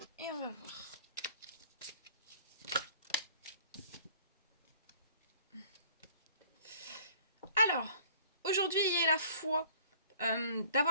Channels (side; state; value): both; inverted; correlation -0.52